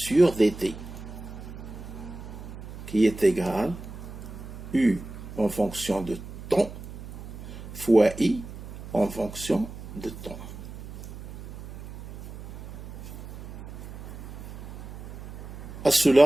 dt qui est égal U en fonction de temps fois I en fonction de temps. À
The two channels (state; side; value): noise; right; hum, 12 dB below the sound